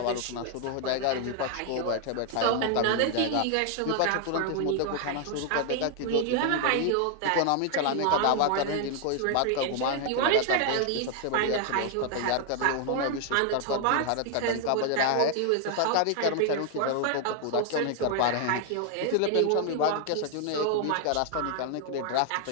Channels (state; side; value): different; both; correlation 0.00